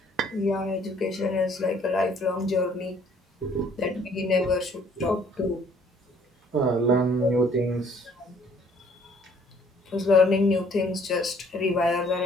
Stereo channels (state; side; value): normal; both; correlation 0.60